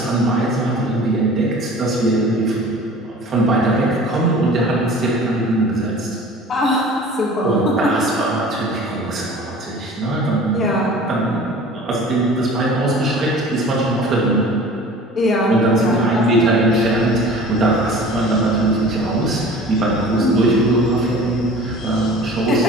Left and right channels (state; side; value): normal; both; correlation 0.43